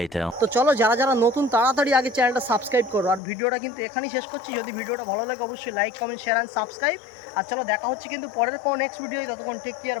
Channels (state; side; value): drops out; right; at 3.2 s